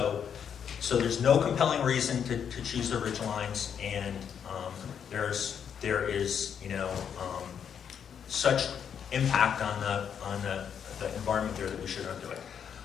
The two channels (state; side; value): quieter; right; 7.9 dB